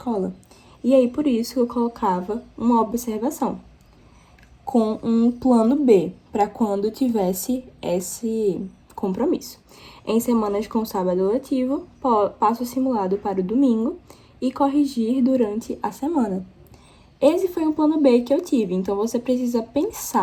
E aí, por isso, eu colocava uma observação com um plano B, para quando tivesse esse compromisso. Em semanas com sábado letivo, passo o simulado para o domingo e corrigir durante a semana. Esse foi um plano B que eu tive, então você precisa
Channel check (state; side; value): identical; both; correlation 1.00